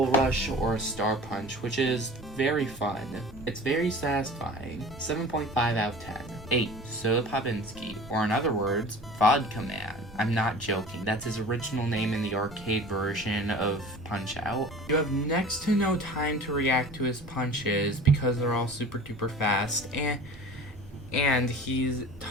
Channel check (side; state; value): both; normal; correlation 0.40